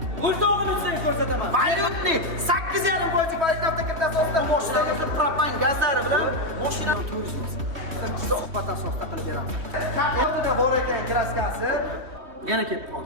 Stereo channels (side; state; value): left; late; 3.4 ms